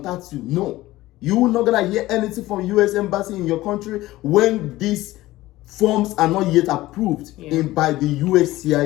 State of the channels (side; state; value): right; quieter; 17.2 dB